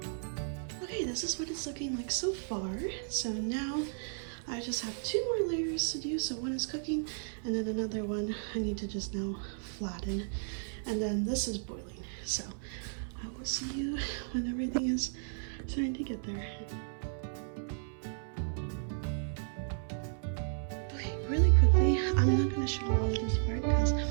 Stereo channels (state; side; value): silent; left; 55 dB below the other